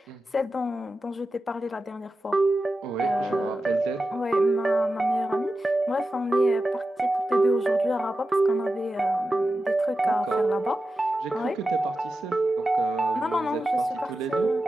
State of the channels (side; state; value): both; normal; correlation 0.92